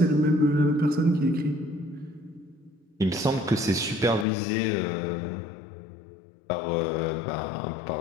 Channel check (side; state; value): right; drops out; at 4.2 s